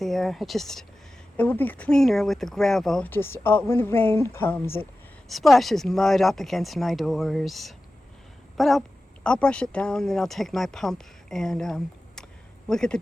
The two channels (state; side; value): normal; both; correlation 0.94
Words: It will be cleaner with the gravel. Just when the rain comes, it splashes mud up against my doors. But I'll brush it down, then I'll take my pump and we'll get the